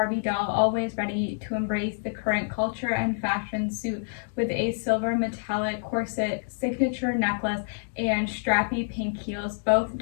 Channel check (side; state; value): right; silent; digital silence